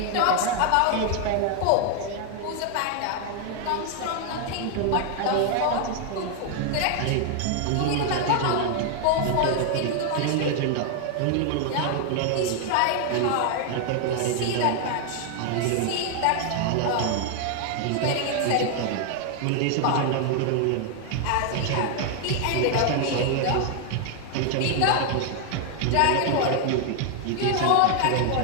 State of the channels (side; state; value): both; different; correlation 0.00